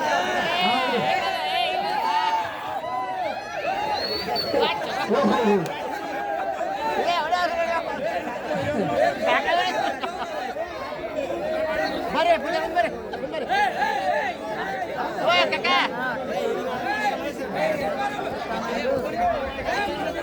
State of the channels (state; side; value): identical; both; correlation 1.00